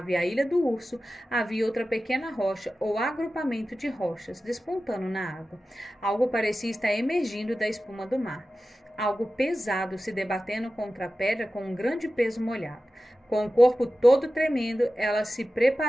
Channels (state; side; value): normal; both; correlation 0.94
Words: e a Ilha do Urso, havia outra pequena rocha ou agrupamento de rochas despontando na água. Algo parecia estar emergindo da espuma do mar. Algo pesado se debatendo contra a pedra com um grande peso molhado. Com o corpo todo tremendo, ela se